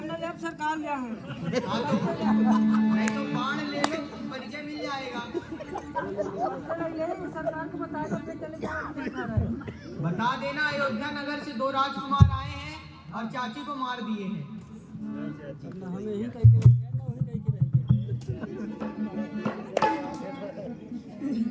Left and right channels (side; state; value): both; identical; correlation 1.00